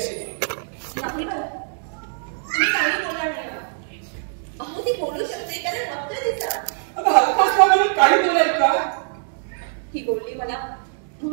नाही मला, तुम्ही काही बोलणार नाही ना. अहो ती बोलू शकते कारण फक्त तिचा. अगं हलकाच म्हणून काही बोलाय का? ही बोलली मला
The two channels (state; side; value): silent; left; digital silence